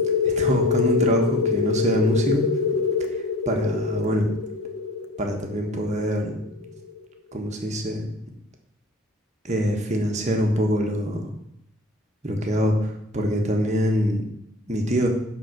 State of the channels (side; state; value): both; normal; correlation 0.41